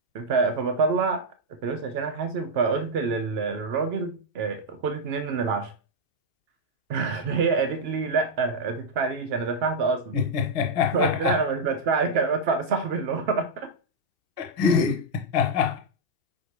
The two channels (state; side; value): late; left; 2.4 ms